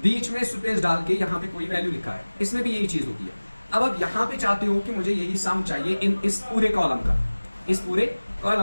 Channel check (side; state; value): both; inverted; correlation -1.00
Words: बीच में स्पेस डाल के यहाँ पे कोई वैल्यू लिखा है, इसमें भी यही चीज होती है। अब आप यहाँ पे चाहते हो कि मुझे यही सम चाहिए इस पूरे कॉलम का, इस पूरे